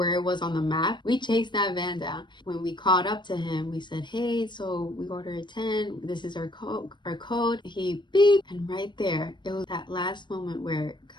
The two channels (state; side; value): late; right; 0.22 ms